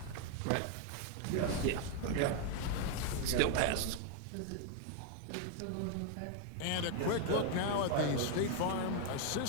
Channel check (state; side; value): different; both; correlation 0.01